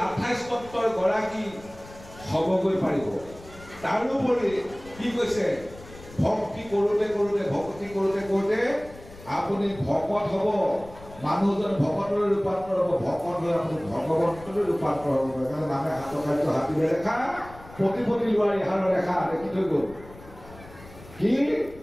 28 তত্ত্বৰ গৰাকী হ'বগৈ পাৰিব তাৰোপৰি কি কৈছে ভক্তি কৰোঁতে কৰোঁতে ভক্তি কৰোঁতে কৰোঁতে আপুনি ভকত হ'ব মানুহজন ভকতলৈ ৰূপান্তৰ হ'ব ভকত হৈ আপুনি ভগৱন্তলৈ ৰূপান্তৰ হ'ব সেইকাৰণে নামে হাতৰ কাৰ্য হাতীৰে ৰেখা প্ৰতিপতি লোৱাৰ ইহাৰৰ ৰেখা দেখি থৈ গ'ল কি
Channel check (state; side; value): noise; left; rumble, 19 dB below the sound